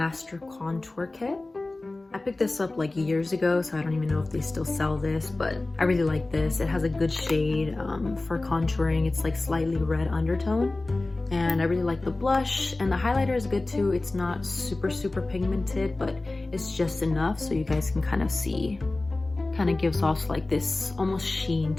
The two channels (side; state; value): right; quieter; 3.0 dB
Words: Contour Kit. I picked this up like years ago, so I don't even know if they still sell this, but I really like this. It has a good shade for contouring. It's like slightly red undertone, and I really like the blush, and the highlighter is good too. It's not super pigmented, but it's just enough so you guys can kind of see. Kind of gives off like this almost sheen